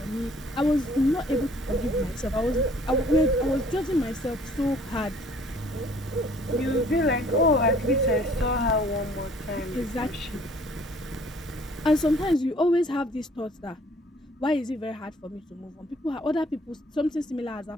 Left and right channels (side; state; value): both; normal; correlation 0.57